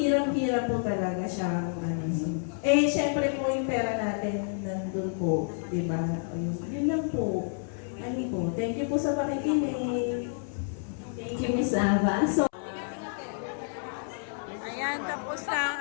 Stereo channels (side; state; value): right; silent; 58 dB below the other